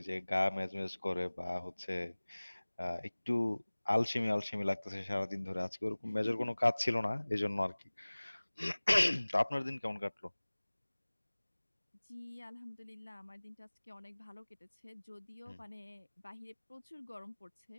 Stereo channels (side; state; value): both; inverted; correlation -1.00